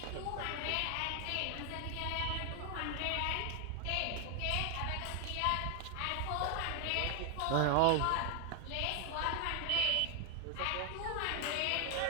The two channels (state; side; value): different; both; correlation 0.00